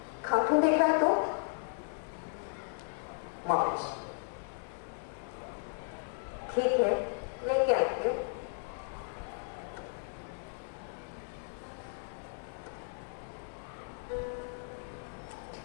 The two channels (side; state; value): right; silent; 54 dB below the other